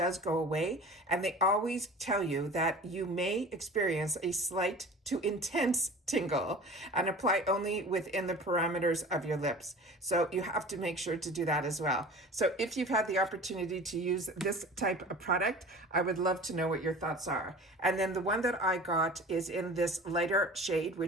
go away. And they always tell you that you may experience a slight to intense tingle and apply only within the parameters of your lips. So you have to make sure to do that as well. So if you've had the opportunity to use this type of product, I would love to know what your thoughts are. And then the one that I got is in this lighter shade,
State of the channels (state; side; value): normal; both; correlation 0.40